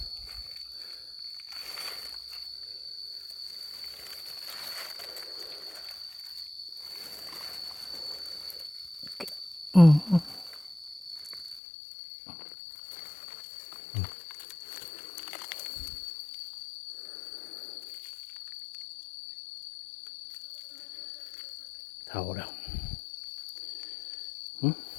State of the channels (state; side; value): drops out; right; at 11.6 s